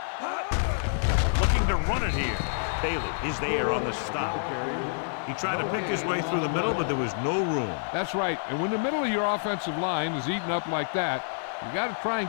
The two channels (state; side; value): silent; right; 60 dB below the other